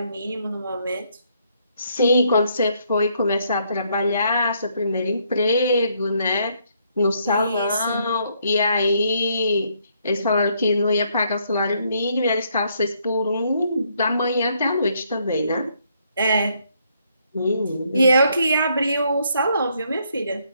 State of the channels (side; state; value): both; inverted; correlation -0.72